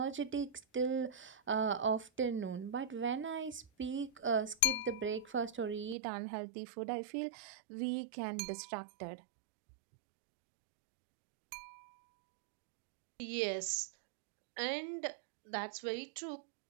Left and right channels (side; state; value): left; drops out; at 6.0 s